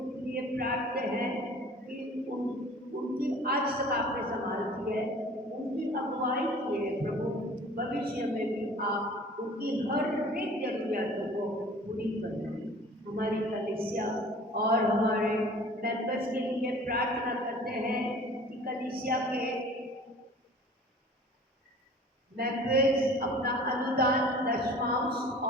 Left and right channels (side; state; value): both; normal; correlation 0.46